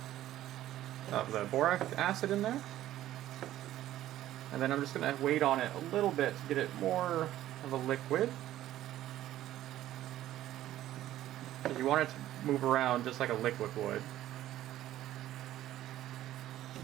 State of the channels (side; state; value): left; quieter; 13.6 dB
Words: of the boric acid in there. And then I'm just going to wait on it a little bit to get it more of a liquid. You want it to move around just like a liquid would.